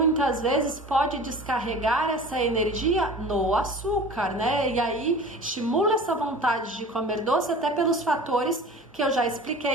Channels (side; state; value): both; normal; correlation 0.40